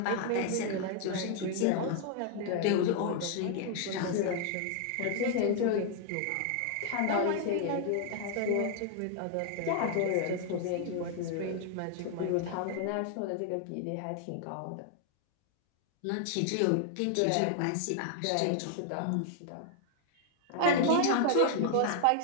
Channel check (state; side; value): different; both; correlation 0.00